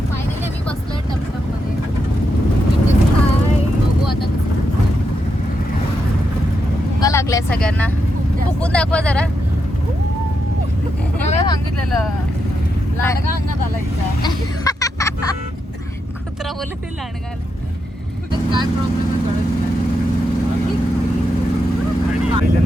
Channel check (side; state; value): both; normal; correlation 0.83